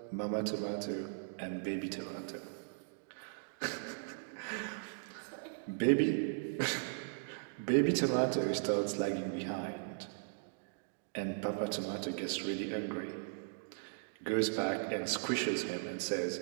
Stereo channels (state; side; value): silent; left; digital silence